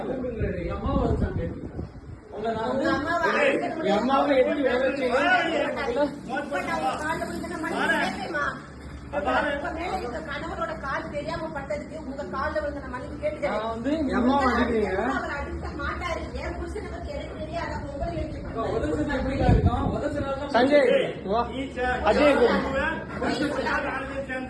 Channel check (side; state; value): both; identical; correlation 1.00